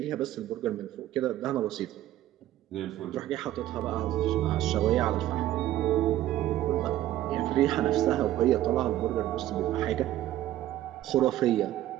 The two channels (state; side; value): quieter; left; 13.7 dB